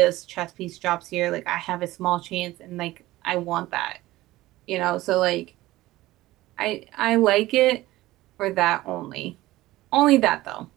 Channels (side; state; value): left; quieter; 17.4 dB